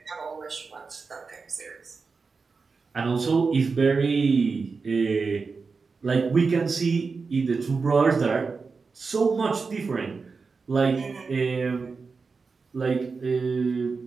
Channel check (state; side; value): quieter; left; 4.7 dB